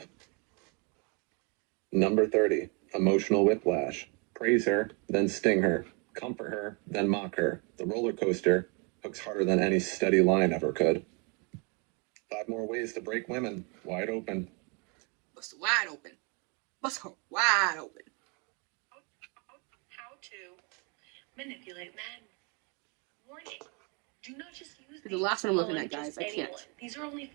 Number 30. Emotional whiplash. Praise her, then sting her. Comfort her, then mock her. The roller coaster hooks harder than any steady line ever could. 5 more ways to break women. Wide open. Bust wide open. Bust her wide open. How to manipulate men. Warning. Do not just use The last one I'm looking on at, guys. just I can't. anyone. These are only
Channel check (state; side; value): quieter; left; 33.5 dB